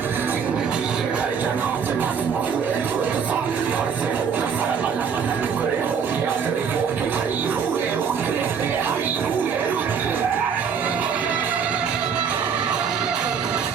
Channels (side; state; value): left; quieter; 6.7 dB